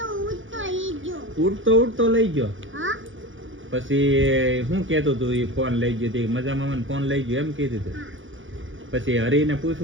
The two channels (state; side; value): late; left; 0.57 ms